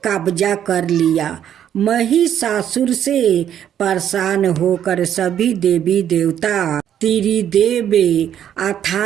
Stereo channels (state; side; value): quieter; left; 10.0 dB